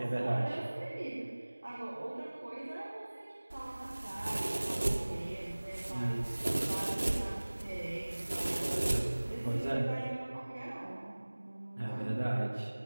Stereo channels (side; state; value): both; inverted; correlation -1.00